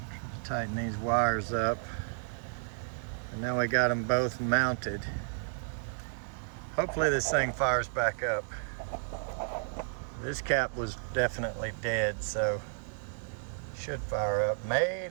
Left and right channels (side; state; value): left; silent; digital silence